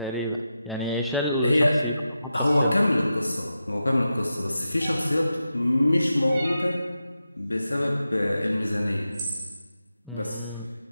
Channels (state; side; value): inverted; both; correlation -0.89